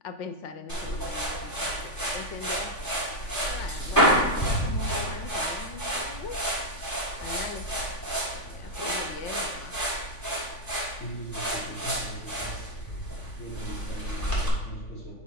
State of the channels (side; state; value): right; late; 3.5 ms